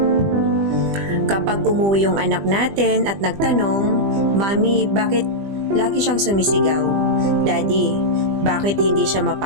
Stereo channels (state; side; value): late; left; 20 ms